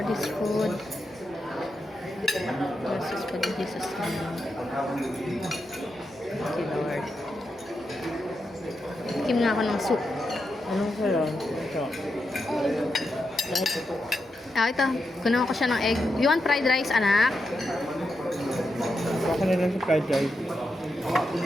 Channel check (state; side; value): normal; both; correlation 0.86